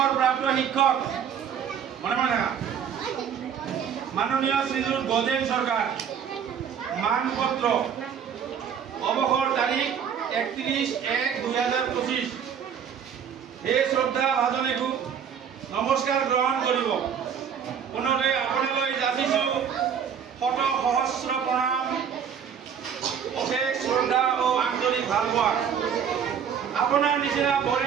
শিক্ষক মনে মনে মাননীয় শ্রীযুত গজেন সরকার মানপত্র অবসর তারিখ 31/1/2025 এই শ্রদ্ধা ভাজনে খুব নমস্কার গ্রহণ করব পুনরে আপোনালৈ যাচিছো শত সহস্র প্ৰণাম অশেষ শ্ৰদ্ধা ও আন্তৰিক ভালপোৱা আপনাৰ নিচিনা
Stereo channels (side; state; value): left; quieter; 7.9 dB